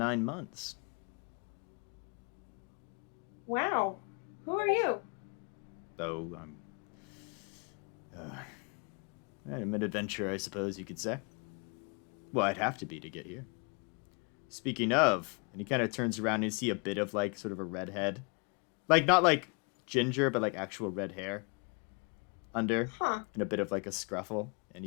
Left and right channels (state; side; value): quieter; right; 34.4 dB